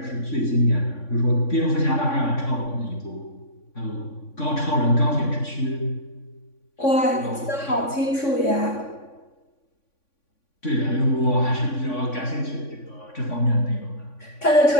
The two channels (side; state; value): right; late; 3.5 ms